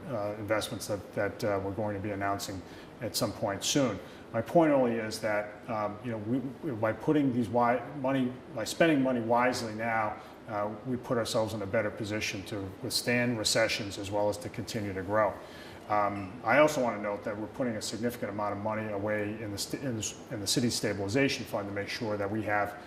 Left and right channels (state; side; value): identical; both; correlation 1.00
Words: investments that we're going to be announcing at some point soon. My point only is that by putting by spending money wisely now, we put ourselves in a better position to withstand recessions as well as to continue to grow. I also want to note that we're putting a significant amount of money away in the city stabilization fund to make sure that we have